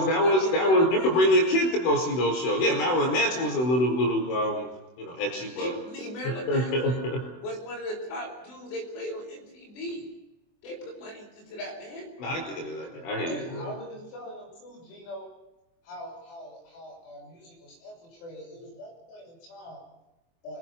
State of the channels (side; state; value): right; late; 24 ms